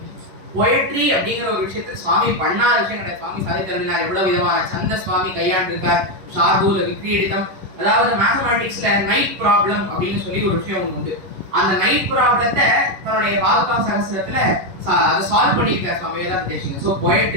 போயட்ரி அப்படிங்கிற ஒரு விஷயத்தில் சுவாமி பண்ணாத விஷயம் கிடையாது. சுவாமி சாதித்தருளினார். எவ்வளவு விதமான சந்த சுவாமி கையாண்டிருக்கார். ஷார்பூல விக்ரீடிதம், அதாவது மேத்தமேட்டிக்ஸ்ல நைட் ப்ராப்ளம் அப்படின்னு சொல்லி ஒரு விஷயம் ஒன்று உண்டு. அந்த நைட் ப்ராப்ளத்தை தன்னுடைய பாதுகா சகஸ்திரத்துல அதை சால்வ் பண்ணியிருக்கார் சுவாமி வேதாந்த தேசிகன். ஸோ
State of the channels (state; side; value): late; left; 11 ms